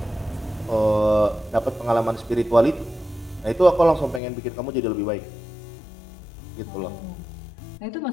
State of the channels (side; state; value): right; drops out; at 4.2 s